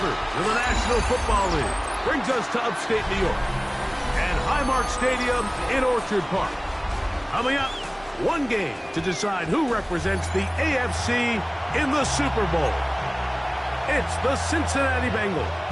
of the National Football League brings us to upstate New York and Highmark Stadium in Orchard Park. Coming up, one game to decide who represents the AFC in the Super Bowl. It's the Cincinnati Bengals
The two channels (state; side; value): identical; both; correlation 1.00